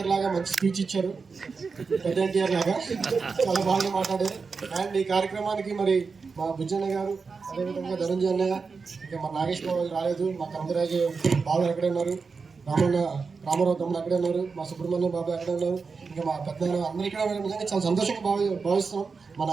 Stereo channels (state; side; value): quieter; left; 4.9 dB